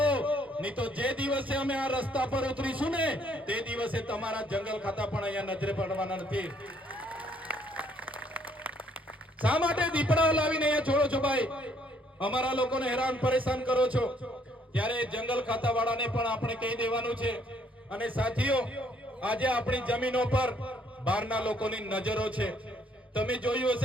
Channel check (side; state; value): both; normal; correlation 0.66